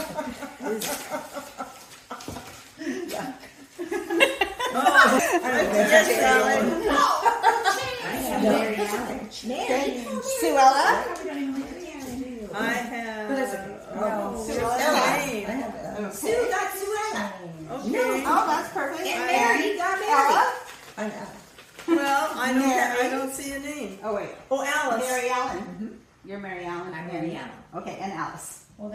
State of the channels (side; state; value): both; identical; correlation 1.00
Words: I have Mary Allen. Mary. Suela. I have. Suela. Name. Sue got Suela. Okay. Oh, that's perfect. And Mary got Mary. Ella? Well, I Mary. don't see a name. Oh, wait. Oh, Alice. Mary Allen. You're Mary Allen. I'm Mary Allen. Okay, and Alice. Well,